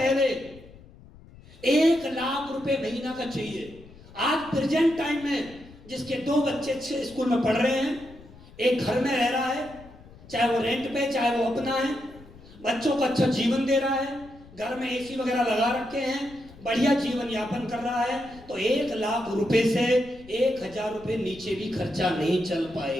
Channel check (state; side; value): noise; left; rumble, 21 dB below the sound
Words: 1 लाख रुपए महीना का चाहिए। आज प्रेजेंट टाइम में जिसके 2 बच्चे अच्छे स्कूल में पढ़ रहे हैं, एक घर में रह रहा है, चाहे वो रेंट पे चाहे वो अपना है, बच्चों को अच्छा जीवन दे रहा है, घर में एसी वगैरह लगा रखे हैं, बढ़िया जीवन यापन कर रहा है, तो 1 लाख रुपए से 1,000 रुपए नीचे भी खर्चा नहीं चल